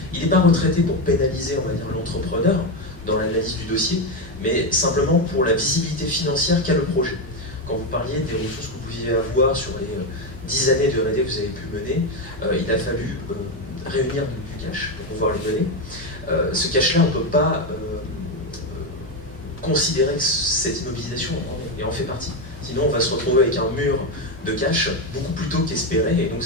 Il n'est pas retraité pour pénaliser, on va dire, l'entrepreneur dans l'analyse du dossier, mais simplement pour la visibilité financière qu'a le projet. Quand vous parliez des ressources que vous pouviez avoir sur les 10 années de R&D que vous avez pu mener, il a fallu réunir du cash pour pouvoir les donner. Ce cash-là, on ne peut pas considérer que cette immobilisation en fait partie. Sinon, on va se retrouver avec un mur de cash beaucoup plus tôt qu'espéré, et donc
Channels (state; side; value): normal; both; correlation 0.10